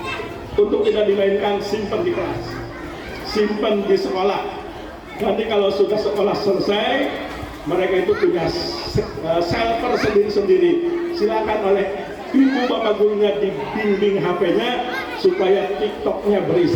Untuk tidak dimainkan, simpan di kelas, simpan di sekolah. Nanti kalau sudah sekolah selesai, mereka itu punya server sendiri-sendiri. Silakan oleh ibu bapak gurunya dibimbing HP-nya supaya TikTok-nya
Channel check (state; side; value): identical; both; correlation 1.00